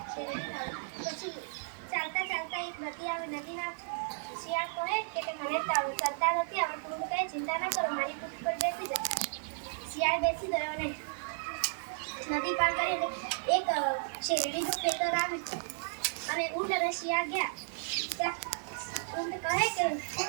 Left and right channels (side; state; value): left; silent; digital silence